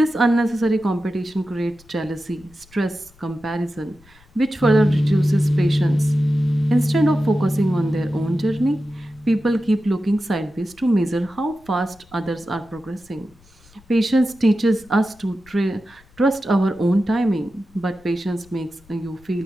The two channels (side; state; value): left; noise; rumble, 28 dB below the sound